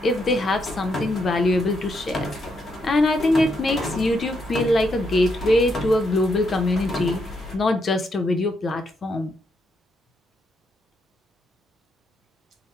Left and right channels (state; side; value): normal; both; correlation 0.78